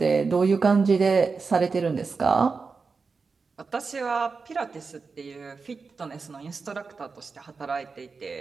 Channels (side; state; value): left; quieter; 4.7 dB